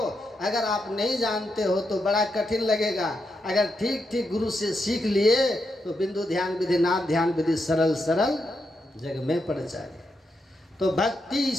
अगर आप नहीं जानते हो तो बड़ा कठिन लगेगा। अगर ठीक ठीक गुरु से सीख लिए तो बिंदु ध्यान विधि, नाद ध्यान विधि सरल सरल जग में पड़ जाए। तो भक्ति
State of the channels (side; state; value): both; normal; correlation 0.83